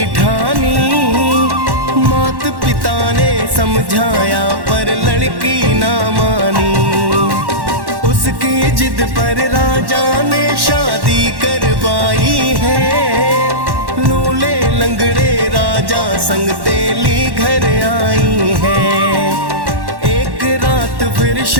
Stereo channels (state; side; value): late; left; 1.1 ms